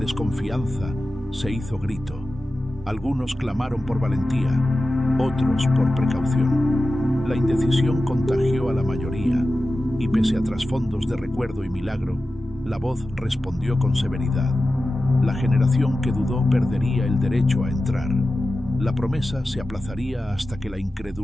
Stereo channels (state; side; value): normal; both; correlation 0.94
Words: se hizo grito. Algunos clamaron por valentía, otros por precaución. La indecisión contagió a la mayoría, y pese a trasfondos de recuerdo y milagro, la voz respondió con severidad. La generación que dudó perdería el derecho a entrar. La promesa se aplazaría hasta que la